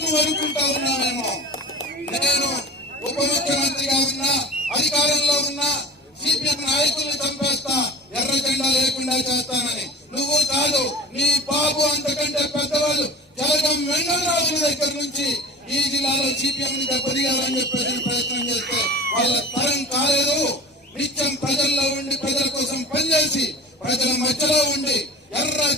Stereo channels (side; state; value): both; normal; correlation 0.36